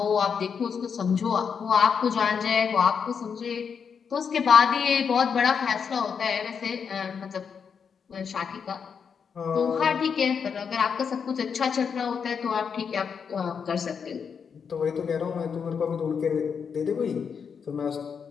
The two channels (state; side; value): quieter; right; 6.5 dB